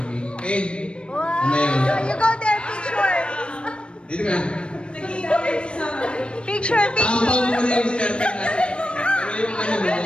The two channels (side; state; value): right; late; 0.057 ms